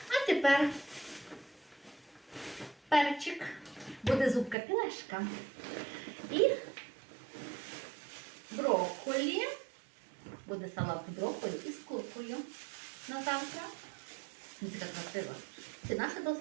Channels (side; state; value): left; drops out; at 4.5 s